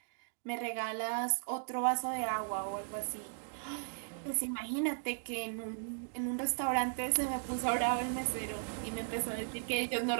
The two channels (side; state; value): left; silent; digital silence